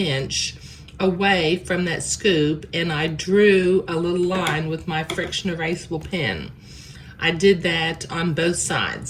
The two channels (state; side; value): identical; both; correlation 1.00